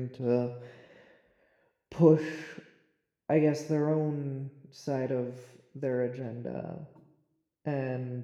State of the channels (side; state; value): both; identical; correlation 1.00